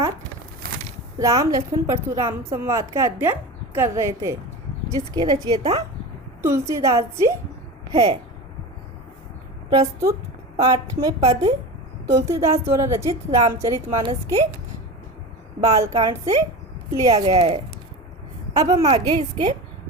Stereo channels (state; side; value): normal; both; correlation 0.28